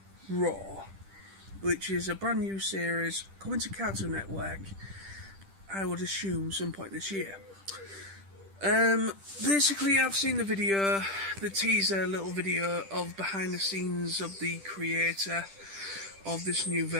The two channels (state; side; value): late; left; 10 ms